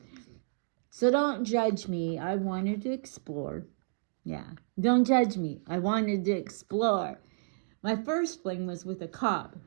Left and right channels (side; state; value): left; silent; digital silence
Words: So don't judge me. I wanted to explore. Yeah, don't judge me. I wanted to explore. My first fling was with a cop.